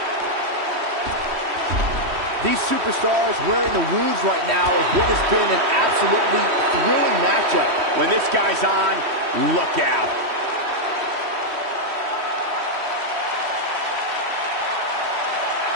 These superstars wearing the wounds right now of what has been an absolutely thrilling matchup. When this guy's on, look out.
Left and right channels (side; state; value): left; late; 3.1 ms